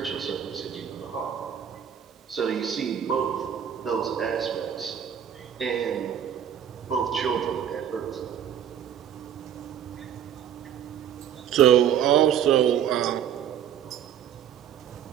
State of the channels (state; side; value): quieter; left; 9.4 dB